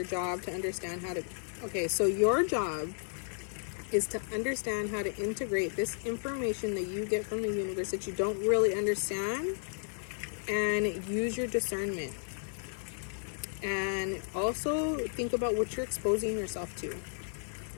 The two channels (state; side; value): silent; right; 56 dB below the other